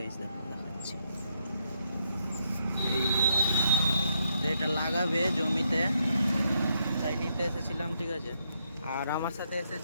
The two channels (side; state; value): both; inverted; correlation -0.77